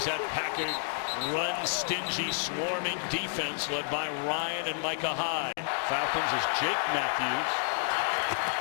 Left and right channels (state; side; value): silent; right; digital silence